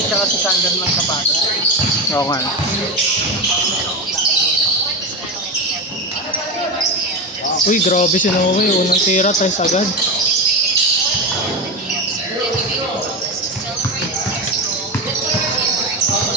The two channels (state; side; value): normal; both; correlation 0.18